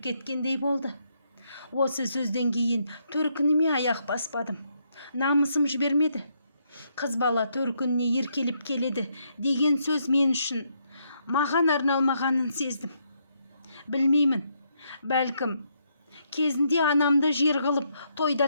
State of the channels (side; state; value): both; inverted; correlation -0.75